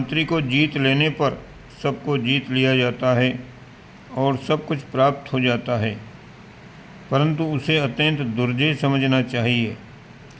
को जीत लेने पर सबको जीत लिया जाता है और सब कुछ प्राप्त हो जाता है, परंतु उसे अत्यंत दुर्जय समझना चाहिए।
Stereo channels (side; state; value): both; identical; correlation 1.00